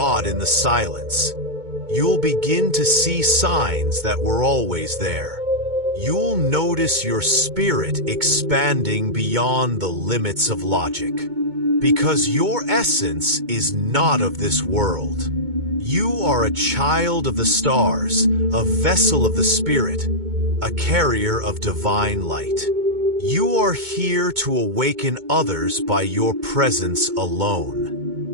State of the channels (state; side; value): late; left; 2.2 ms